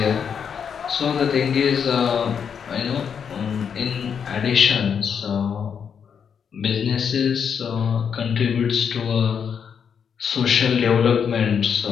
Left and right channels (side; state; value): right; quieter; 7.2 dB